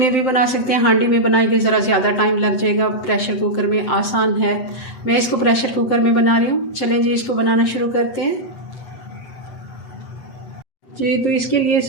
भी बना सकते हैं। हांडी में बनाएंगे ज़रा ज़्यादा टाइम लग जाएगा, प्रेशर कुकर में आसान है। मैं इसको प्रेशर कुकर में बना रही हूँ। चलें जी इसको बनाना शुरू करते हैं जी। तो इसके लिए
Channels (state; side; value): late; right; 8.0 ms